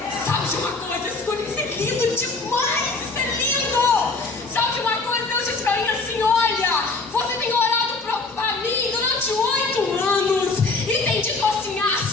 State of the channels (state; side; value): quieter; right; 3.7 dB